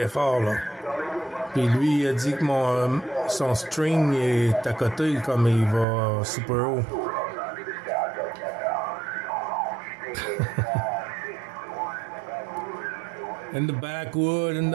fort, là. Puis lui, il a dit que son string est à côté, comme il va super haut. In the backwood, in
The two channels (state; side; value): drops out; left; at 5.9 s